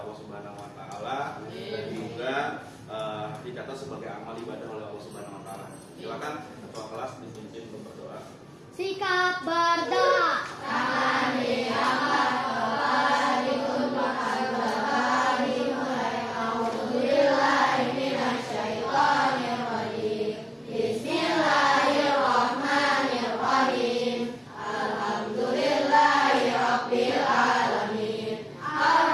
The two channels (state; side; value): identical; both; correlation 1.00